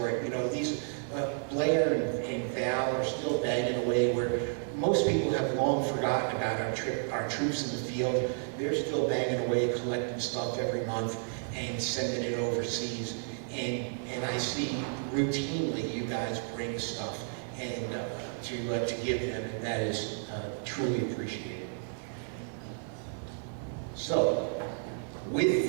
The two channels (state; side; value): silent; left; digital silence